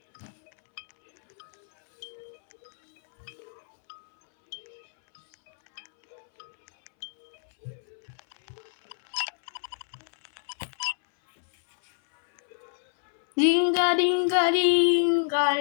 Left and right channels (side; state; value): right; silent; 60 dB below the other